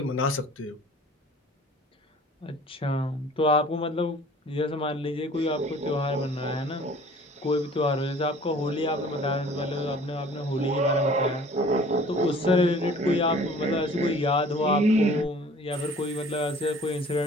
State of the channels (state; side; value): normal; both; correlation 0.50